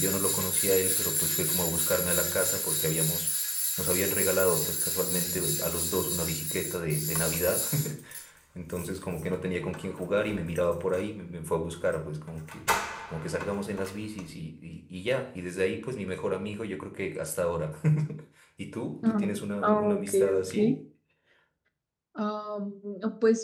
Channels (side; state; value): both; identical; correlation 1.00